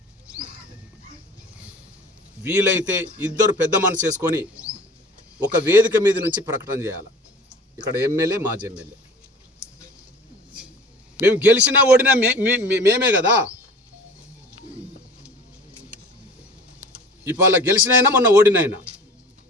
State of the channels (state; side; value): normal; both; correlation 0.43